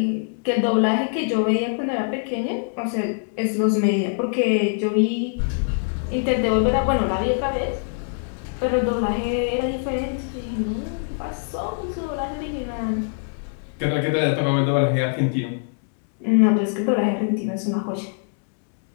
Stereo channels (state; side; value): silent; right; digital silence